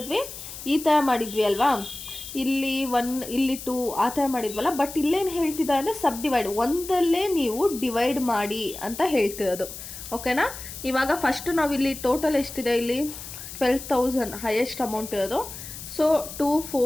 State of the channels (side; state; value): left; noise; hiss, 11 dB below the sound